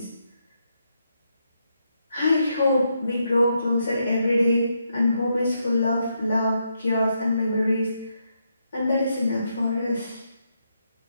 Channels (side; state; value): both; inverted; correlation -0.80